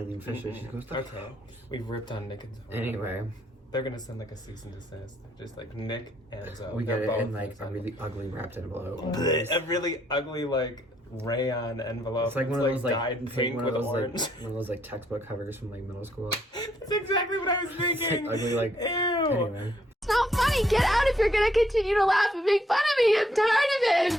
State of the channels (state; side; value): normal; both; correlation 0.70